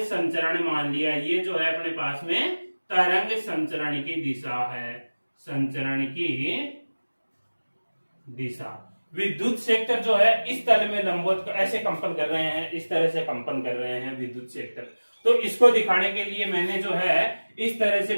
संचरण मान लिया, ये जो है अपने पास में तरंग संचरण की दिशा है, संचरण की दिशा। विद्युत क्षेत्र जो है इस तल में लंबवत ऐसे कंपन कर रहे हैं, इस तरह से कंपन कर रहे हैं विद्युत क्षेत्र। तो इसको दिखाने के लिए मैंने जो है इस तरह से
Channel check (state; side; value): inverted; both; correlation -1.00